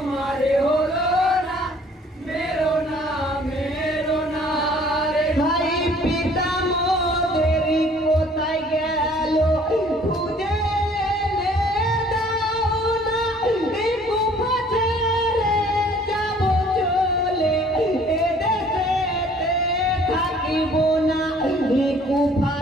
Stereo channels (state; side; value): normal; both; correlation 0.55